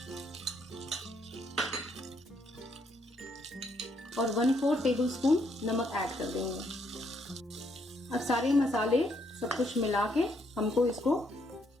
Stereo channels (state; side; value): normal; both; correlation 0.72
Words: और 1/4 टेबल स्पून नमक ऐड कर देंगे। अब सारे मसाले सब कुछ मिला के हमको इसको